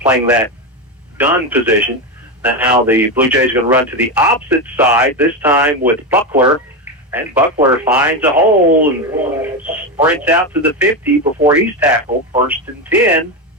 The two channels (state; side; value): normal; both; correlation 0.14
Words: that gun position. Now the Blue Jays are going to run to the opposite side, this time with Buckler. And Buckler finds a hole and sprints out to the 50 before he's tackled. 1st and 10,